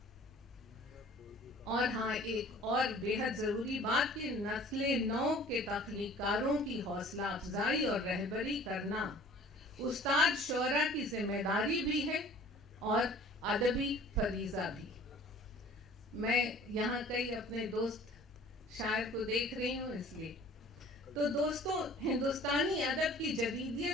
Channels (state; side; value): normal; both; correlation 0.49